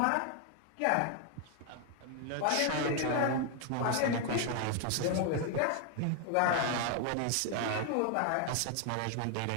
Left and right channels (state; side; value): different; both; correlation 0.00